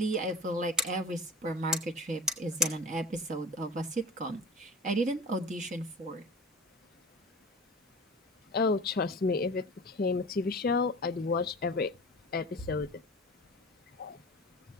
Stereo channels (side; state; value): both; normal; correlation 0.37